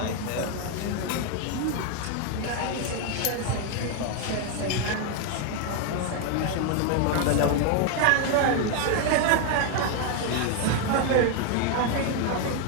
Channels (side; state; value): both; different; correlation 0.01